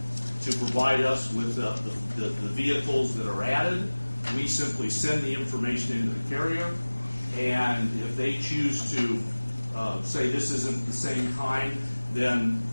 to provide us with the vehicles that are added. We simply send the information into the carrier, and if they choose to say this isn't the same kind, then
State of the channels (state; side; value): inverted; both; correlation -1.00